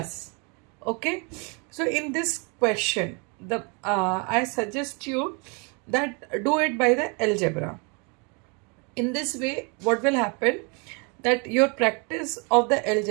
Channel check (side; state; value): left; quieter; 33.1 dB